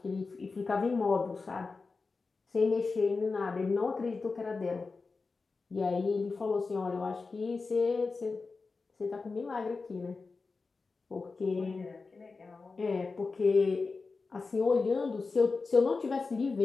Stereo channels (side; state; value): right; quieter; 4.2 dB